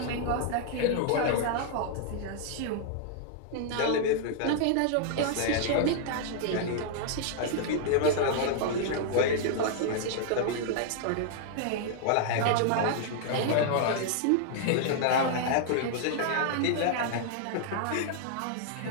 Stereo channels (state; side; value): different; both; correlation -0.01